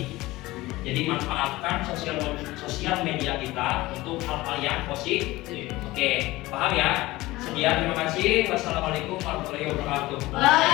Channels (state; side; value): quieter; right; 19.1 dB